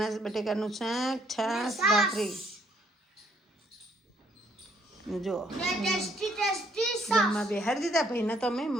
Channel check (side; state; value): both; normal; correlation 0.68